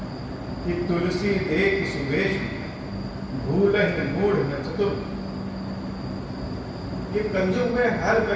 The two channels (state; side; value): identical; both; correlation 1.00